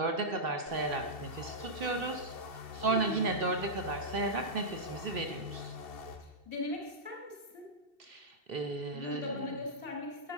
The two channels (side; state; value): left; late; 2.7 ms